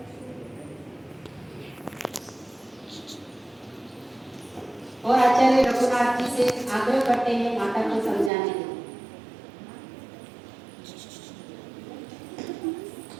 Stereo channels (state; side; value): drops out; left; at 8.3 s